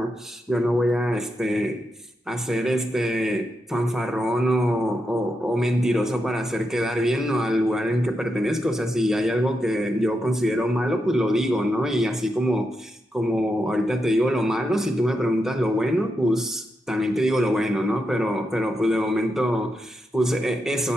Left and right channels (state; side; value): normal; both; correlation 0.85